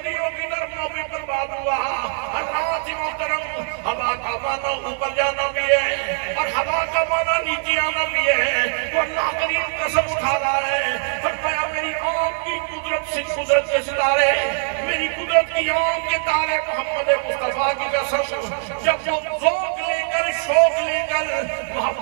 की नरमों में बर्बाद हुआ। अल्लाह मोहतरम हवा का माना ऊपर जाना भी है और हवा का माना नीचे आना भी है, तो अल्लाह करीम कसम उठा रहा है, फरमाया मेरी आँख की कुदरत से कुदरत के सितारे, मेरी कुदरत की आँख के तारे मोहम्मद मुस्तफा की कसम, जब वो ज़ौक़ लेकर शौक लेकर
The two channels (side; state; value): left; silent; 61 dB below the other